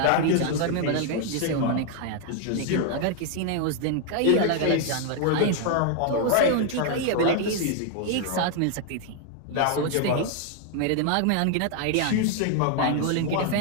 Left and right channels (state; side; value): different; both; correlation 0.00